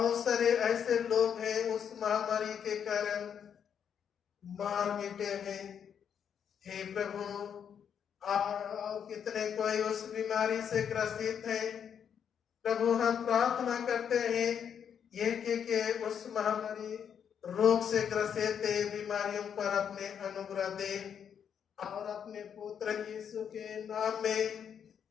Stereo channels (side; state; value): right; quieter; 8.0 dB